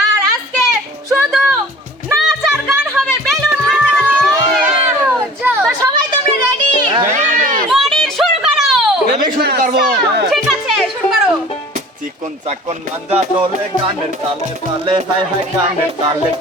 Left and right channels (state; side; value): normal; both; correlation 0.45